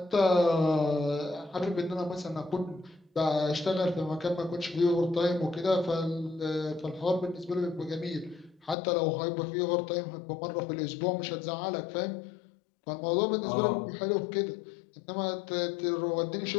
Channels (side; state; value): right; drops out; at 8.8 s